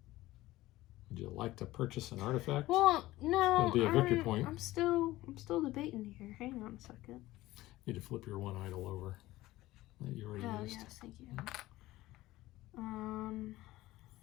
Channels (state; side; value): quieter; right; 17.3 dB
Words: Would you like to purchase an artifact? Well, no. It'll be a victory point. I'm still debating here. Hang on a second. You need to flip your one idol over that you already Oh used. yes, thank you.